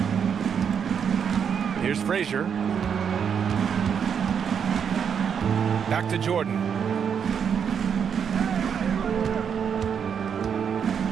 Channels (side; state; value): left; quieter; 7.4 dB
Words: Here's Frazier. Back to Jordan.